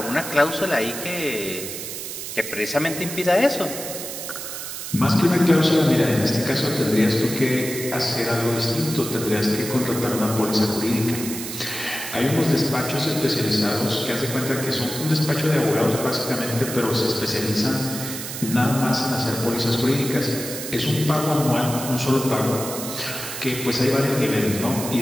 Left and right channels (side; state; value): right; noise; hiss, 7 dB below the sound